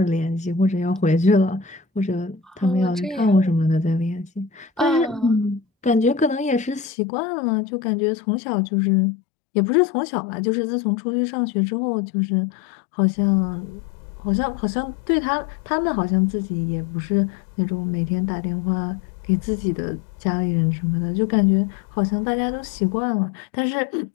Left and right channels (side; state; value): right; drops out; at 6.9 s